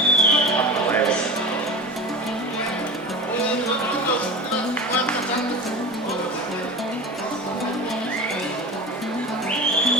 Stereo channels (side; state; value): both; normal; correlation 0.31